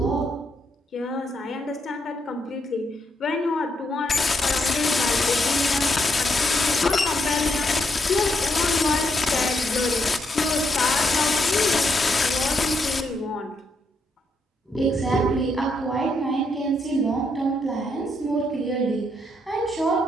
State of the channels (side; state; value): both; normal; correlation 0.78